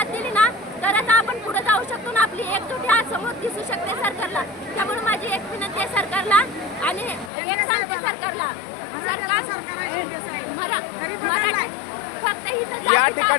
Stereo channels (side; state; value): right; drops out; at 7.3 s